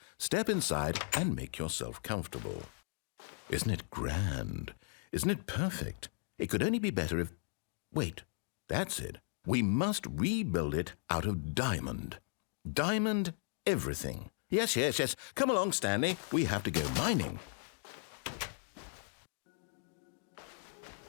step inside and make yourself comfortable. Isn't it grand? Isn't it perfect? It could only be better if... Wait, that's it. We must rebuild it out of diamond. Diamond everything. Yes. Come along, Stanley. We have to go mining.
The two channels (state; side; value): silent; right; 53 dB below the other